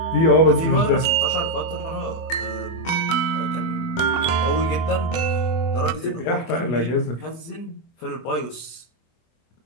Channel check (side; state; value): right; late; 24 ms